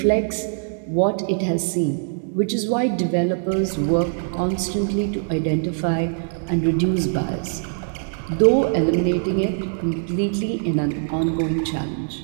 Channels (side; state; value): left; silent; digital silence